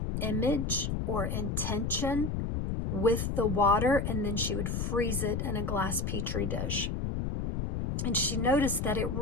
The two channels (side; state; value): left; noise; rumble, 1 dB below the sound